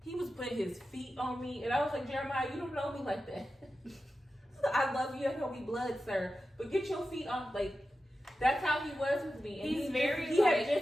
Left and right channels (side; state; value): both; normal; correlation 0.92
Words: he was putting his feet on me, and I was like, Jeremiah, you don't know me like that. I love you. I know we blood, sir, but get your feet on. Like that's how he was with me. And He's he very, He like-